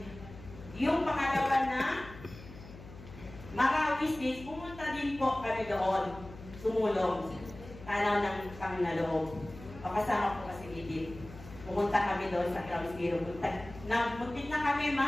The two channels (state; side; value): noise; left; hum, 16 dB below the sound